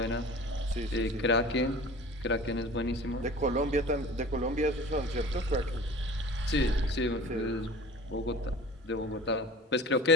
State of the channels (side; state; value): both; normal; correlation 0.42